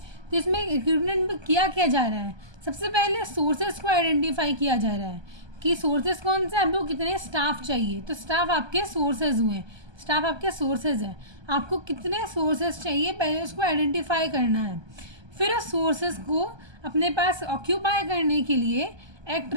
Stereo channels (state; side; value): late; left; 1.2 ms